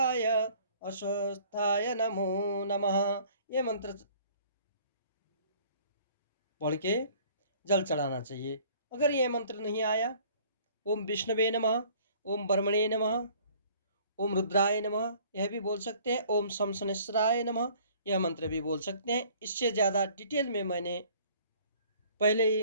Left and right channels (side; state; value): both; inverted; correlation -0.55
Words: अश्वस्थाय नमो नमः। यह मंत्र पढ़ के जल चढ़ाना चाहिए। अगर यह मंत्र नहीं आया, ओम विष्णवे नमः, ओम ब्रह्मणे नमः, ओम रुद्राय नमः, यह भी बोल सकते हैं, ओम शम शनैश्चराय नमः, यह मंत्र भी बोल सकते हैं। इससे ज़्यादा डिटेल में मैंने पहले ही